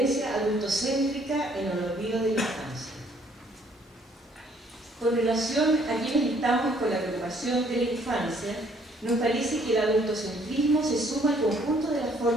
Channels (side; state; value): both; normal; correlation 0.63